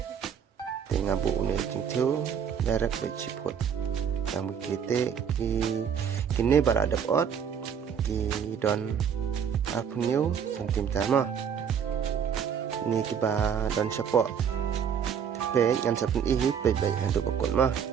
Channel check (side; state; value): left; quieter; 7.7 dB